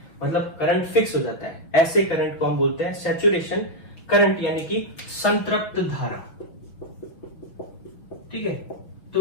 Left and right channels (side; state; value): right; late; 5.9 ms